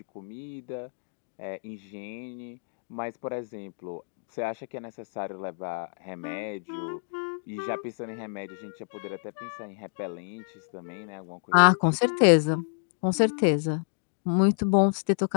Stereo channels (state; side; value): silent; right; digital silence